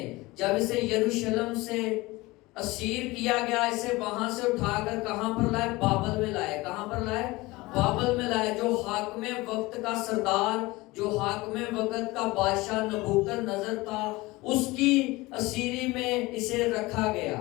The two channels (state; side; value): quieter; right; 21.4 dB